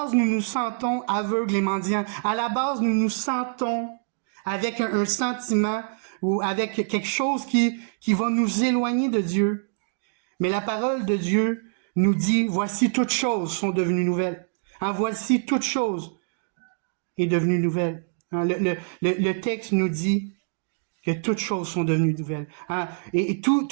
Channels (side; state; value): left; silent; digital silence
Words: nous nous sentons aveugles et mendiants. À la base, nous nous sentons avec un sentiment ou avec quelque chose qui va nous éloigner de Dieu. Mais la parole de Dieu nous dit, voici toutes choses sont devenues nouvelles. Voici toutes choses est devenue nouvelle. Le texte nous dit que toutes choses sont devenues nouvelles. Et